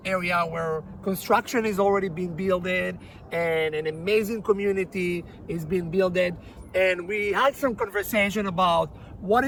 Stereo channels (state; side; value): identical; both; correlation 1.00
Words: area where construction is already being built and an amazing community is being built. And we had some conversation about what